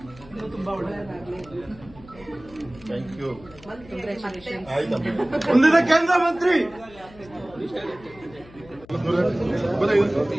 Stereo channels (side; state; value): left; noise; hum, 22 dB below the sound